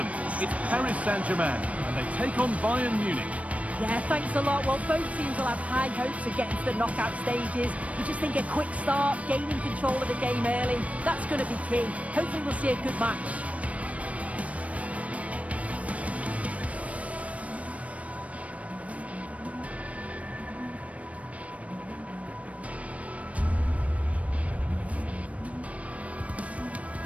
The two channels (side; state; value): left; late; 0.065 ms